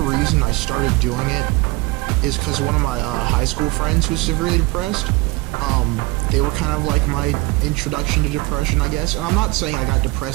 I started doing it is because one of my high school friends was severely depressed. They were kind of like my introduction to depression, I guess. And I'm not saying I got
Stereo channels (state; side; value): quieter; left; 22.6 dB